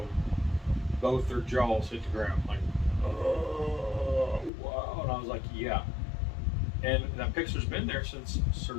both their jaws hit the ground, like, oh, wow. And I was like, yeah. And that picture's been there since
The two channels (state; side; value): drops out; right; at 4.5 s